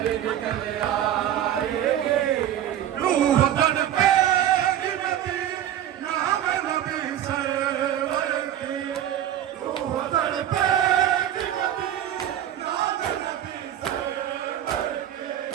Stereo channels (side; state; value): left; quieter; 11.2 dB